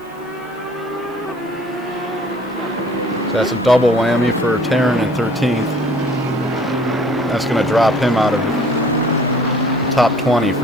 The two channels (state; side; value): noise; left; hiss, 29 dB below the sound